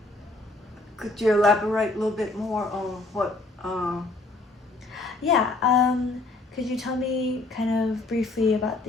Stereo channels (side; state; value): right; quieter; 3.1 dB